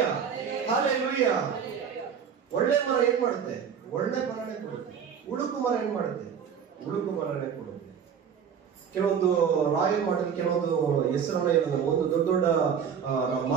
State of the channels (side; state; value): left; quieter; 7.4 dB